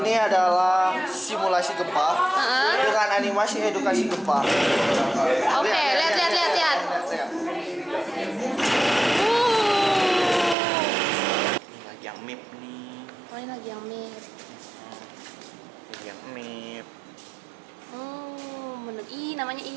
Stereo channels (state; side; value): drops out; left; at 10.6 s